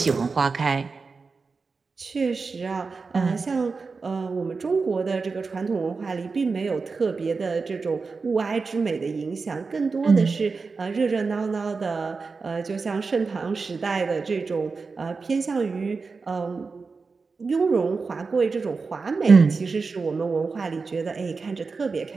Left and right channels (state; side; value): quieter; left; 4.5 dB